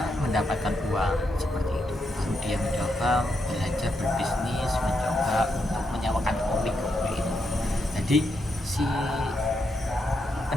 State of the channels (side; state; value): both; normal; correlation 0.82